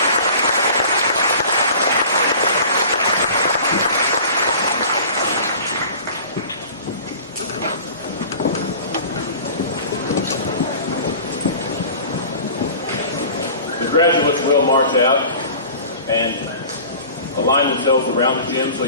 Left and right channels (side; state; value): both; inverted; correlation -0.42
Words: The graduates will march out and align themselves around the gym so